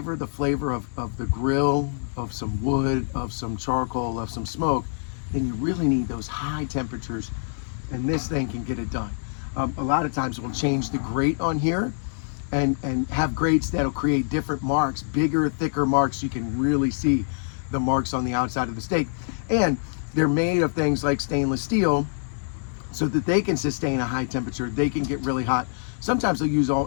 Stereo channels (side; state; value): right; silent; digital silence